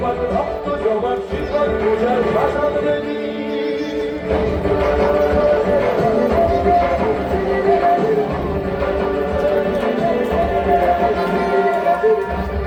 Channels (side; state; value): both; identical; correlation 1.00